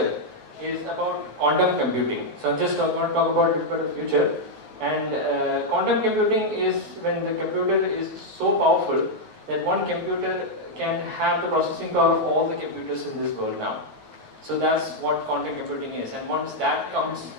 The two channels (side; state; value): left; late; 9.3 ms